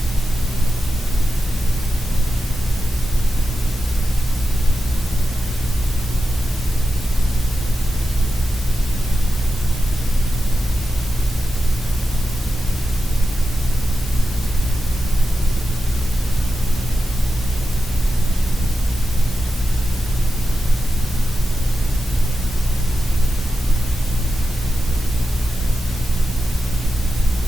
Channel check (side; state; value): both; normal; correlation 0.90